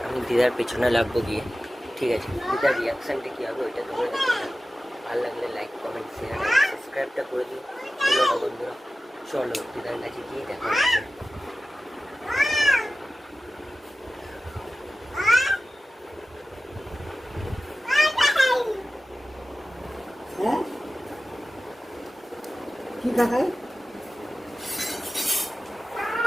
আমি দিদার পেছনে লাগবো গিয়ে, ঠিক আছে? দিদার রিয়াকশানটা কী হবে ওইটা তোমরা দেখে নাও। ভালো লাগলে লাইক কমেন্ট শেয়ার অ্যান্ড সাবস্ক্রাইবটা করে দিও বন্ধুরা। চলো দিদার কাছে গিয়ে দেখা হচ্ছে। কি দেখায়?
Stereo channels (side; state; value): both; normal; correlation 0.95